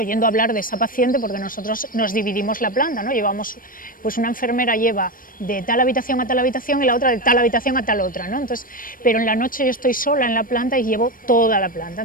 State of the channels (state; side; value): late; right; 0.40 ms